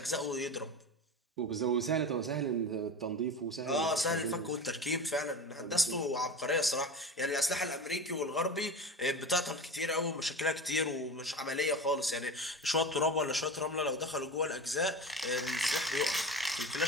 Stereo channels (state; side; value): normal; both; correlation 0.29